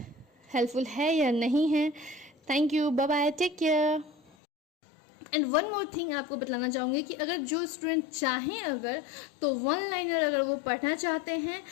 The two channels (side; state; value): right; drops out; at 4.3 s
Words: हेल्पफुल है या नहीं है। Thank you, bye bye, take care. And one more thing आपको बतलाना चाहूँगी कि अगर जो स्टूडेंट चाहें अगर तो 1 लाइनर अगर वो पढ़ना चाहते हैं